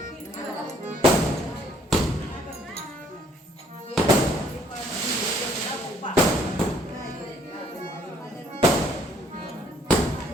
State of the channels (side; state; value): both; normal; correlation 0.63